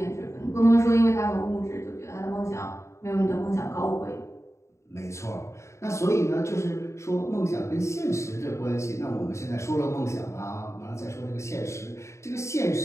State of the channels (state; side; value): late; right; 0.14 ms